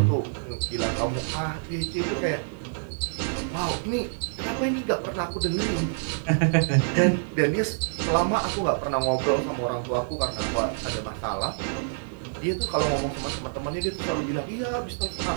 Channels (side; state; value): left; silent; digital silence